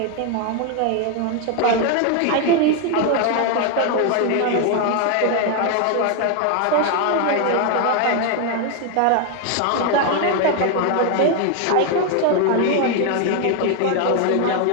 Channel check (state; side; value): different; both; correlation 0.01